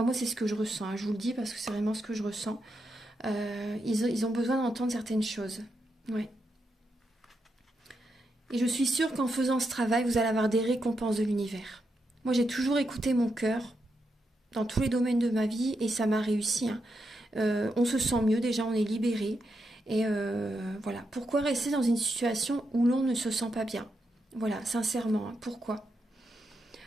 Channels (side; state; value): both; normal; correlation 0.84